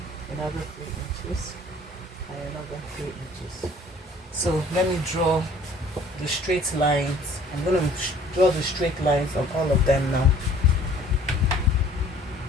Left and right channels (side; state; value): both; normal; correlation 0.54